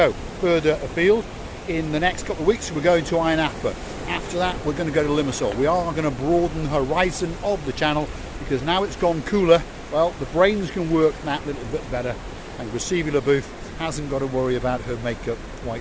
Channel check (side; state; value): both; identical; correlation 1.00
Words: further afield. In the next couple of weeks, we're going to Ayia Napa. After that, we're going to go to Limassol. We are going to broaden the horizon of the channel, because now it's gone cooler, well, the brains can work that little bit better, and Receiving the Booth hasn't got to worry about her makeup